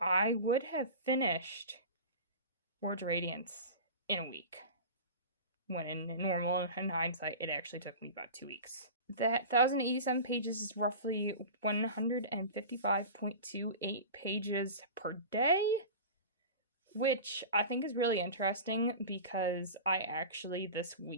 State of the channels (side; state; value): both; inverted; correlation -0.32